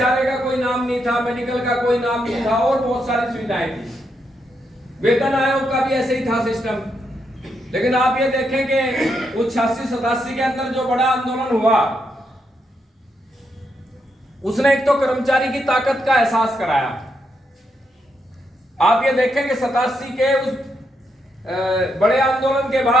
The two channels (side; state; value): both; normal; correlation 0.80